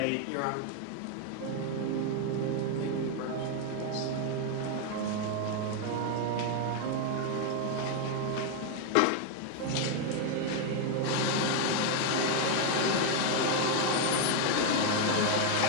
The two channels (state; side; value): different; both; correlation 0.01